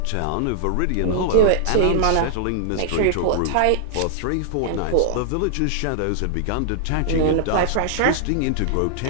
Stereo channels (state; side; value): different; both; correlation -0.01